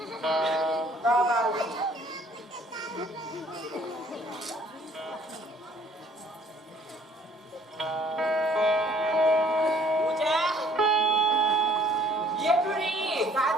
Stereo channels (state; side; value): normal; both; correlation 0.58